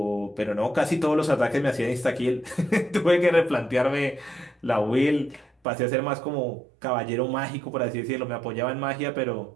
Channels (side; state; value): left; drops out; at 5.5 s